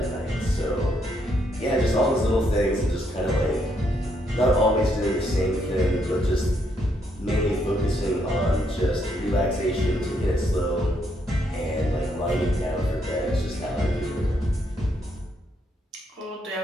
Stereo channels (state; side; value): normal; both; correlation 0.75